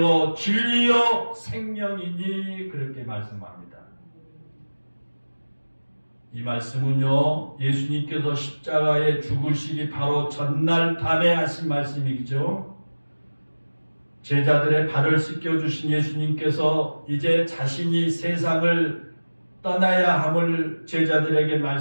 진리요 생명이니 그렇게 말씀합니다. 이 말씀은요, 예수님께서 십자가에 죽으시기 바로 전날 밤에 하신 말씀이죠. 제자들의 발을 씻겨주신 예수님께서 이제 자신이 세상을 떠나야 함을 제자들에게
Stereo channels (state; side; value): inverted; both; correlation -1.00